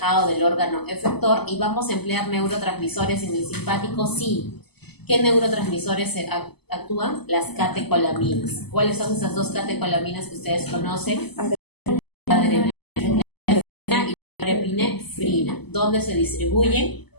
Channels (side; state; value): right; late; 0.98 ms